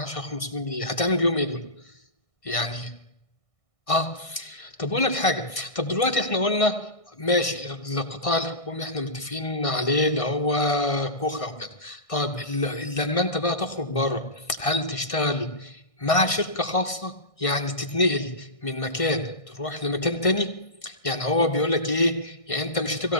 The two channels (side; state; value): right; late; 1.6 ms